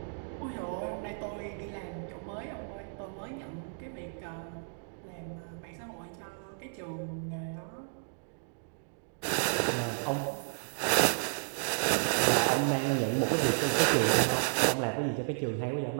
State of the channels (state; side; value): silent; left; digital silence